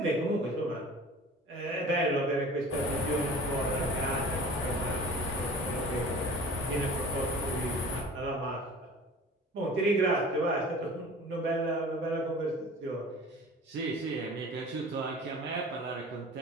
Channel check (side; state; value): both; normal; correlation 0.42